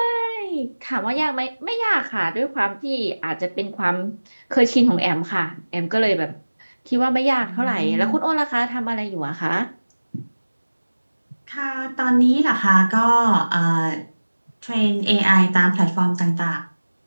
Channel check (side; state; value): both; inverted; correlation -1.00